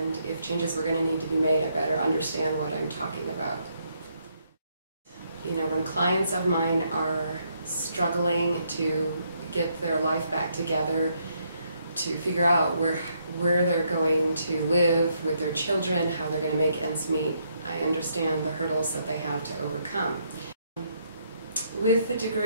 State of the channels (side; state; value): both; inverted; correlation -0.74